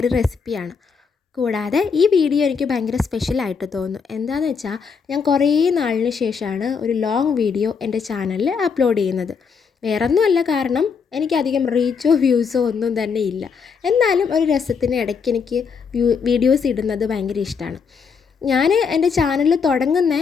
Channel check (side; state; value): right; quieter; 5.9 dB